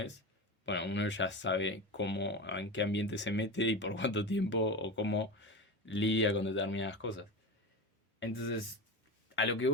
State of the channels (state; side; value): normal; both; correlation 0.24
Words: bueno, uno ya sabe cómo, en qué ambiente se mete y por cuánto tiempo o cómo lidia con determinadas cosas. Entonces, a lo que